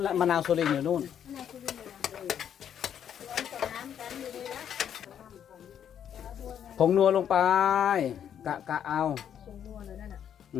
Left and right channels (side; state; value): right; quieter; 9.1 dB